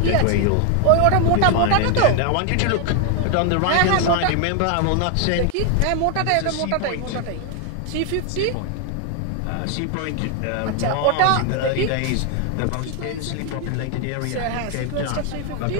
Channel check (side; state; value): both; different; correlation 0.01